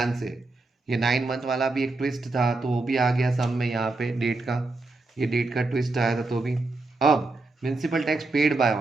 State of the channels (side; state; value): left; quieter; 3.3 dB